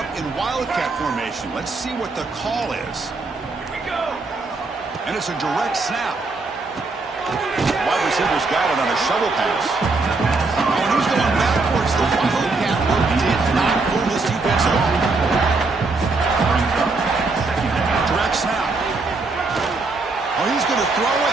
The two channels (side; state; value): left; quieter; 3.7 dB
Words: in wildcat formation. Let's see what the call is. And it's a direct snap. Wide receiver's got it on a shovel pass. And he's going backwards. The wildcat work did not fool this defense at all. Direct snap. Oh, he's going to throw